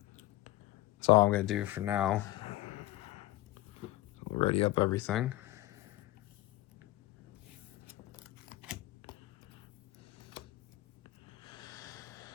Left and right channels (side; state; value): right; quieter; 17.0 dB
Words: that's all I'm going to do for now. Ready up everything.